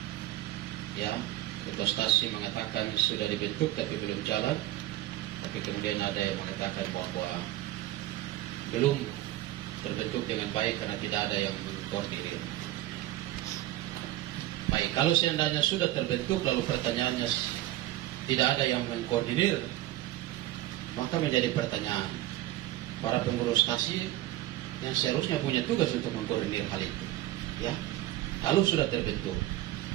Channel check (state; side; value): quieter; left; 15.4 dB